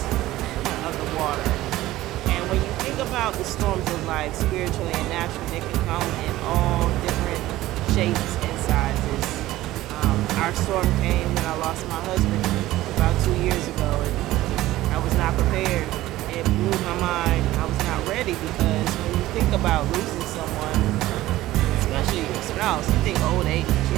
of the water. And when you think about the storms of life, spiritually and naturally, they can come in all different shapes and sizes. Our storm came when I lost my husband about 2 years ago, and I was not prepared. It blew my mind. I was not ready because when you think about losing someone, especially your spouse, you think old age,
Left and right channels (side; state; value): left; quieter; 16.2 dB